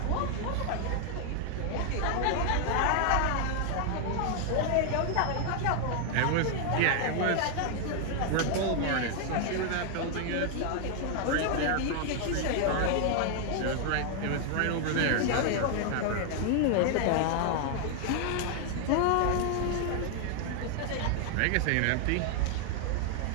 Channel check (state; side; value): different; both; correlation 0.00